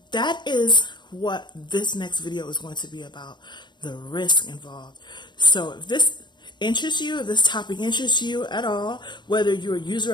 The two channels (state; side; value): late; right; 0.22 ms